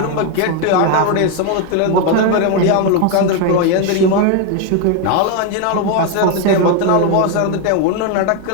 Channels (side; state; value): both; different; correlation 0.01